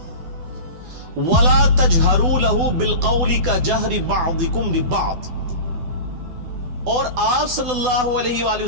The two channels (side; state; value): left; late; 12 ms